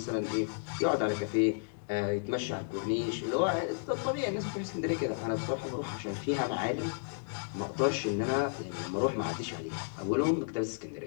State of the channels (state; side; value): silent; right; digital silence